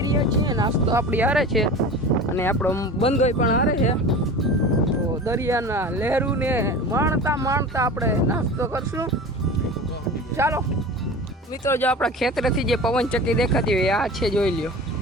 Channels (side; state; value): both; normal; correlation 0.35